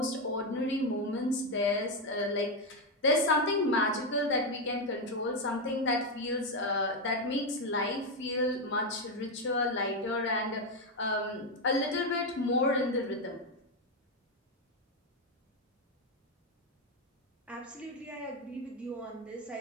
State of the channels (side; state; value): both; normal; correlation 0.07